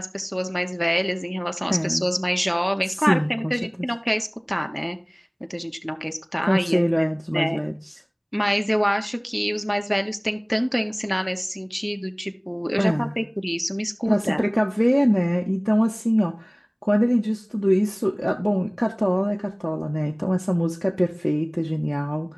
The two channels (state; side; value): identical; both; correlation 1.00